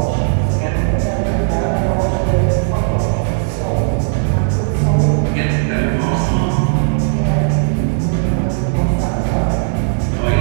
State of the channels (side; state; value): left; silent; digital silence